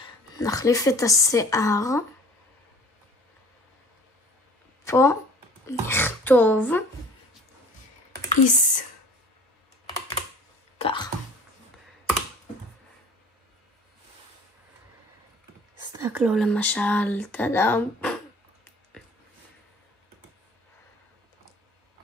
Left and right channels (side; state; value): both; normal; correlation 0.48